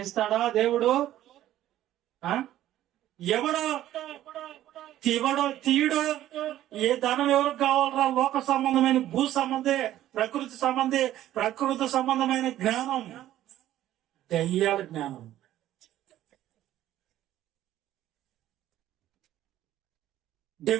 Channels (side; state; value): left; quieter; 13.2 dB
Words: దేవుడు? ఎవడో తీయడో. ఏ ధనం ఎవరికి కావాలరా? లోక సంబంధమైన భూ సంబంధే, ప్రకృతి సంబంధమైన జ్ఞానం, దయ్యాల జ్ఞానం.